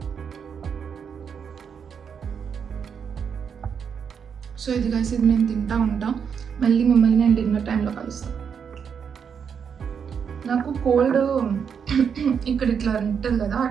సో ఇది కలిసి ఇది నేను తింటా ఉంటా. మళ్ళీ మిమ్మల్ని నేను డిన్నర్ టైంలో కలుస్తాను. నాకు కోల్డ్ ఇక్కడ ఇట్లా ఉంటుంది కదా,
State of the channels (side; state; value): left; quieter; 7.0 dB